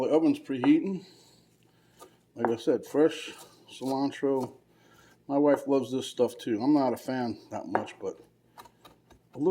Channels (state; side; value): identical; both; correlation 1.00